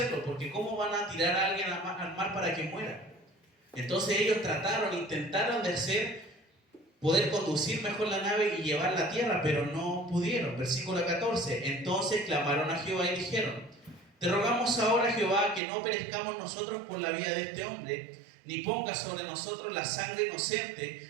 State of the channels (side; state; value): left; drops out; at 15.6 s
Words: porque ¿cómo van a tirar a alguien al mar para que muera? Entonces ellos intentaron de poder conducir mejor la nave y llevarla a tierra, pero no pudieron. Versículo 14. Entonces clamaron a Jehová y dijeron, te rogamos ahora, Jehová, que no perezcamos nosotros por la vida de este hombre, ni pongas sobre nosotros la sangre